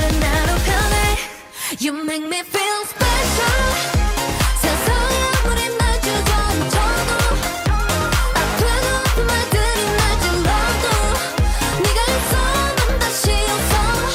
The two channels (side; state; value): both; identical; correlation 1.00